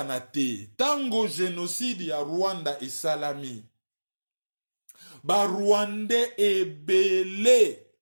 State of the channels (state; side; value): inverted; both; correlation -1.00